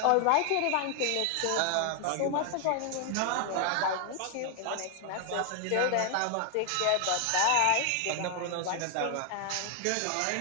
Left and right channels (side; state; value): both; different; correlation 0.00